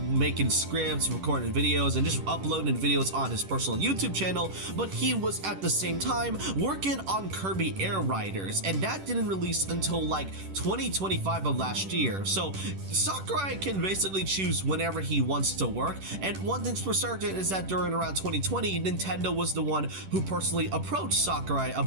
scripts, recording videos, and just uploading videos on his personal YouTube channel, but he was at the same time working on Kirby Air Riders, and that didn't release until like 2025 of last year. So Sakurai can basically choose whenever he wants to work, and one thing's for certain is that during around 2020, Nintendo was the one who personally approached Sakurai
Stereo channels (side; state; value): left; late; 10 ms